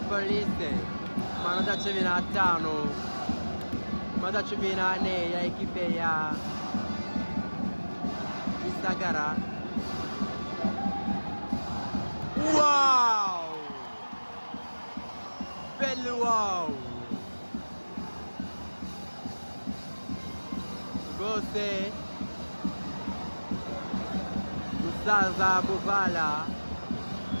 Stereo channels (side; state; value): both; inverted; correlation -1.00